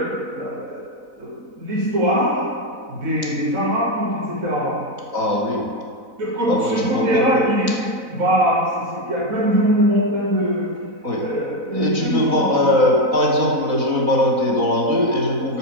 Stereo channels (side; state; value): left; late; 4.0 ms